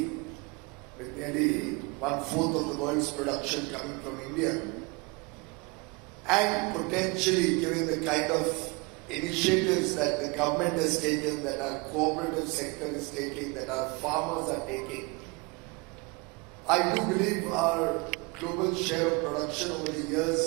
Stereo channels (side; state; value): left; quieter; 27.8 dB